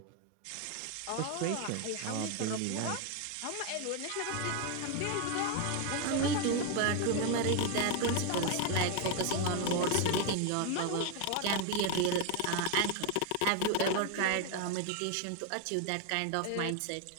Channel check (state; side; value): different; both; correlation 0.01